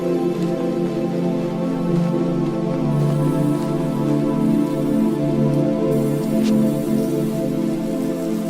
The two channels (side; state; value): both; identical; correlation 1.00